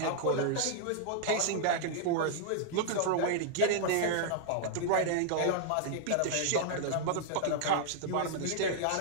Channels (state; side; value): different; both; correlation 0.00